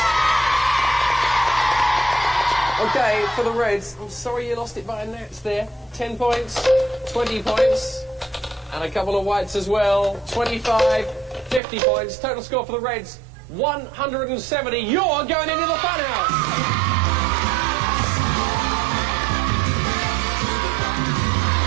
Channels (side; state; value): left; drops out; at 11.6 s